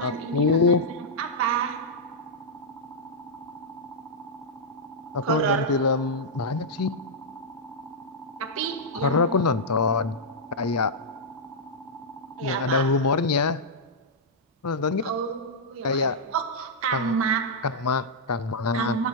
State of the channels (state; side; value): normal; both; correlation -0.06